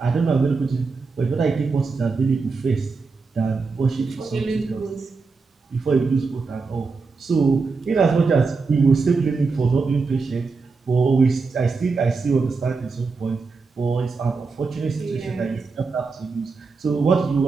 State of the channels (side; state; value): left; quieter; 4.4 dB